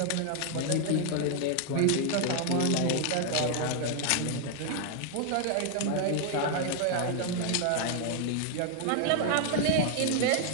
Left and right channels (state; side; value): different; both; correlation 0.00